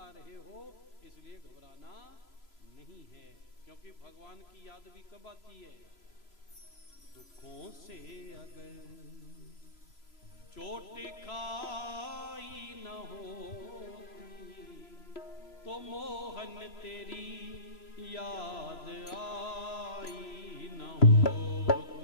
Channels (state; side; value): late; right; 3.0 ms